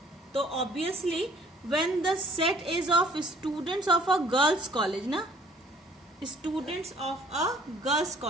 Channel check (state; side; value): normal; both; correlation 0.57